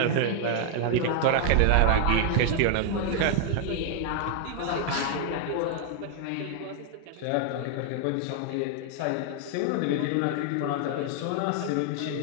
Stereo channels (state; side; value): different; both; correlation 0.00